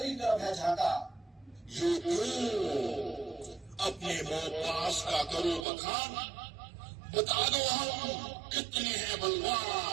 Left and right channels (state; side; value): drops out; left; at 5.7 s